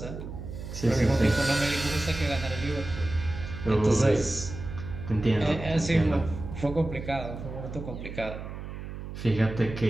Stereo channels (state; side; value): noise; right; hum, 9 dB below the sound